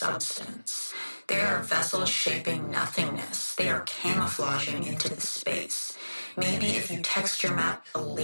They are vessels shaping nothingness. They are camouflaging into the space. Maybe if you texture map a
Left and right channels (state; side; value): inverted; both; correlation -1.00